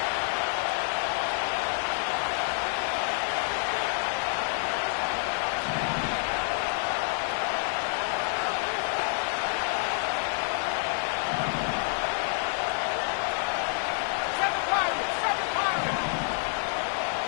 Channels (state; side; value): silent; right; 56 dB below the other